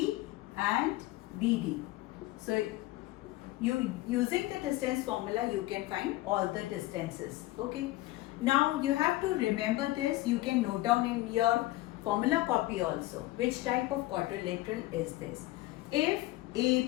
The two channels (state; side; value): quieter; right; 18.0 dB